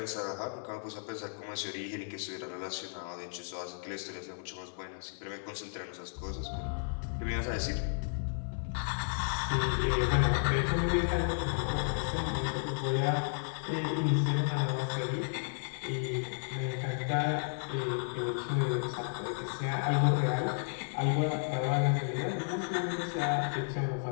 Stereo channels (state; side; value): silent; right; digital silence